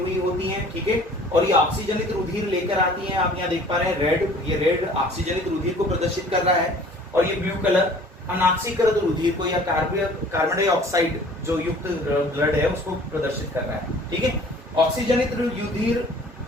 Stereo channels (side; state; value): both; normal; correlation 0.50